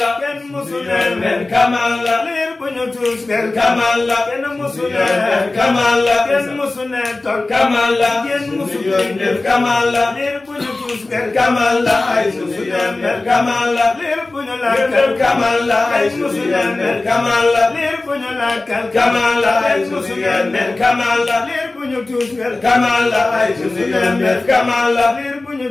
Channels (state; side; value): quieter; right; 3.1 dB